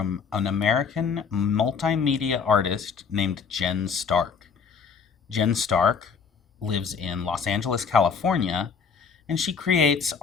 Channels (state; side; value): quieter; right; 6.0 dB